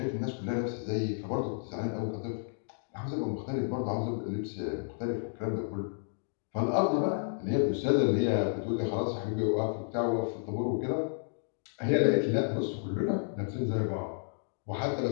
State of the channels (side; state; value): right; silent; digital silence